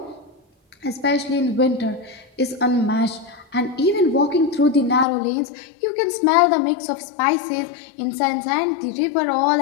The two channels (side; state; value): right; drops out; at 5.1 s